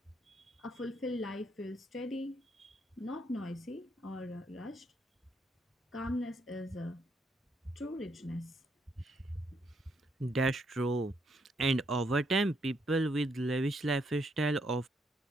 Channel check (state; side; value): normal; both; correlation 0.74